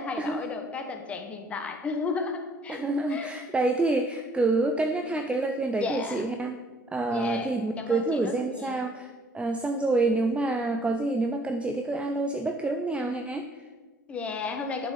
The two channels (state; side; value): normal; both; correlation 0.62